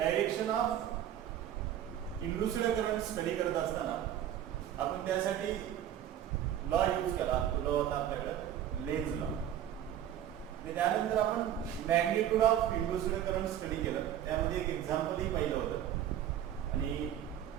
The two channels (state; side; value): quieter; left; 10.9 dB